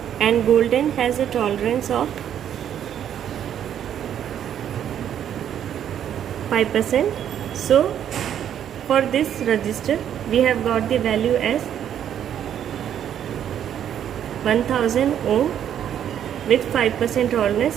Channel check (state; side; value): quieter; left; 9.8 dB